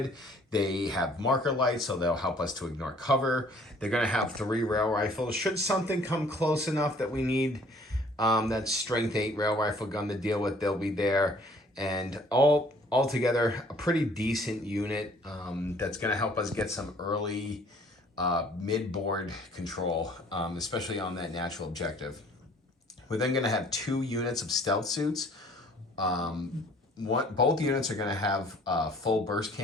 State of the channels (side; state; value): both; normal; correlation 0.56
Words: They have marker lights, so they'll help us to ignore cover. They're going to have 3 rail rifles. Should something come close enough that we need that strength 8 rail rifle gun to deal with, they'll be there. And altogether, a pretty decent unit that's going to help us get some early mid-board control, especially on that natural objective. We're then going to have 2 units of stealth suits. Both units are going to have full burst